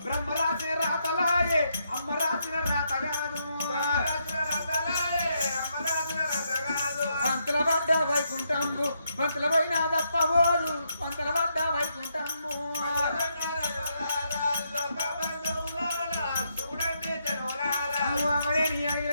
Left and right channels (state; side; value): inverted; both; correlation -0.79